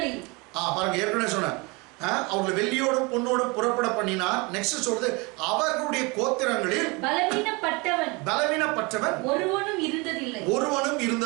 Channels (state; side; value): quieter; left; 27.3 dB